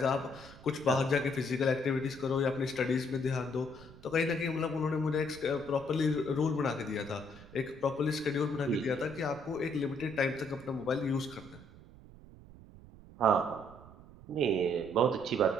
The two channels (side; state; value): right; noise; rumble, 19 dB below the sound